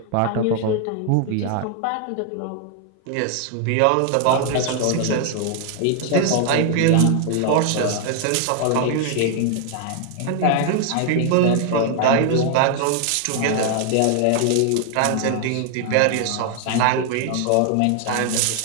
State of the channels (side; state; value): both; different; correlation 0.00